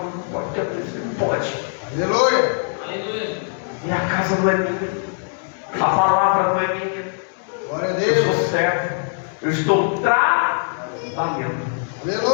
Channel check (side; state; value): right; silent; 65 dB below the other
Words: pode, não pode. Aleluia. Aleluia. E a casa não é minha. A palavra não é minha. Glória a Eu Deus. sou servo. Eu estou trabalhando.